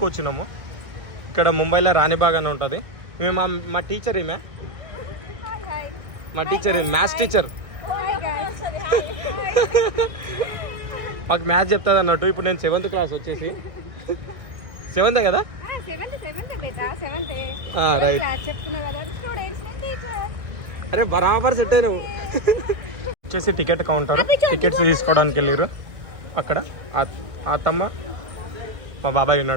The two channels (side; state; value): left; late; 1.9 ms